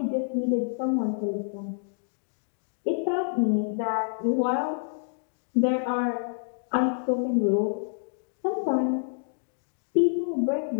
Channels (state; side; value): silent; right; digital silence